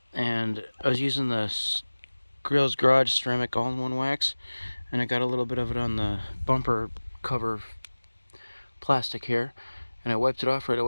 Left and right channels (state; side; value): inverted; both; correlation -1.00